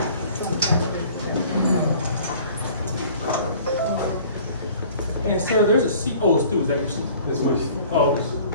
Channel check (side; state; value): both; inverted; correlation -0.50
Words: And sir, there's a seat. Oh, it's two. Is that your seat? This way. Oh,